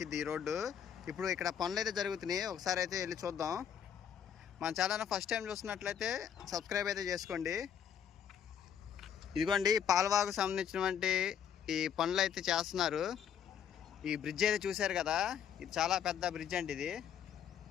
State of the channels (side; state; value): right; quieter; 8.6 dB